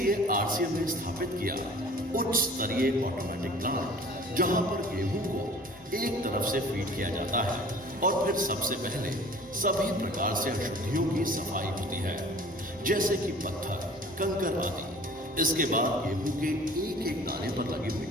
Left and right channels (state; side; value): normal; both; correlation 0.46